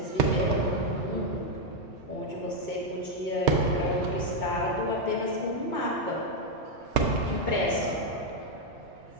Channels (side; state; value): both; normal; correlation 0.01